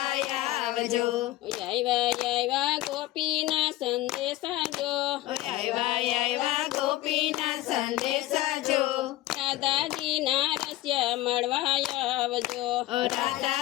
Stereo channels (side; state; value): right; quieter; 16.4 dB